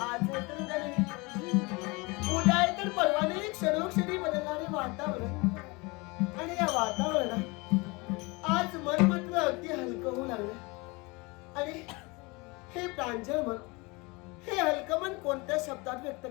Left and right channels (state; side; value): quieter; right; 26.2 dB